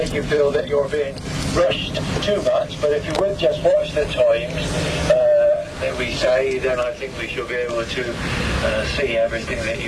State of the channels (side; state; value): both; identical; correlation 1.00